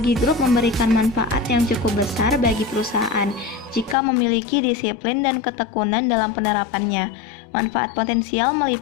grup memberikan manfaat yang cukup besar bagi perusahaan jika memiliki disiplin dan ketekunan dalam penerapannya. Manfaat potensial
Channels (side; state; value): right; drops out; at 4.0 s